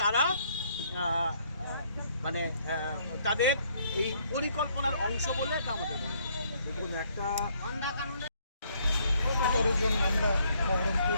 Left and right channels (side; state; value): both; inverted; correlation -0.67